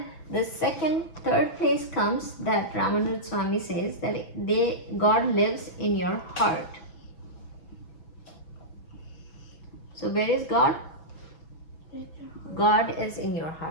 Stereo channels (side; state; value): right; late; 6.0 ms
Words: the third place comes that Ramanuja Swami says that God lives in your heart. So where is God? God is in your